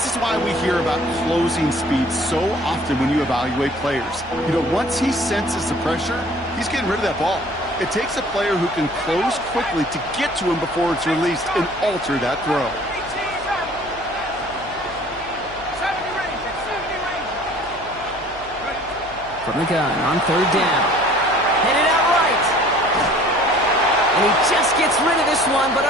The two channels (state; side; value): noise; left; hum, 20 dB below the sound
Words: is why we hear about closing speed so often when you evaluate players. You know, once he senses the pressure, he's getting rid of that ball. It takes a player who can close quickly to get to him before it's released and alter that throw. From the gun on 3rd down. Headed out right. And he just gets rid of this one, but